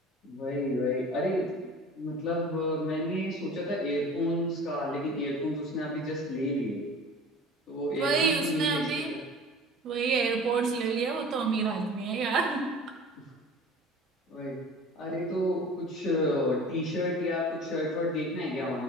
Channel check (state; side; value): normal; both; correlation 0.41